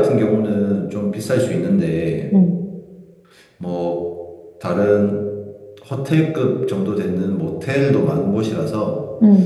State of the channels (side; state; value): both; identical; correlation 1.00